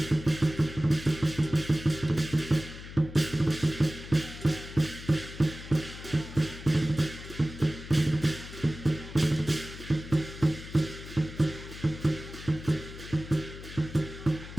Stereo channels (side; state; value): left; noise; hum, 13 dB below the sound